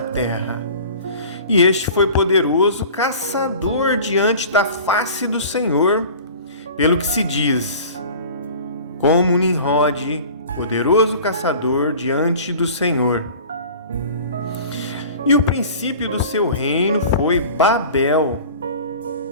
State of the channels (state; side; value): inverted; both; correlation -0.41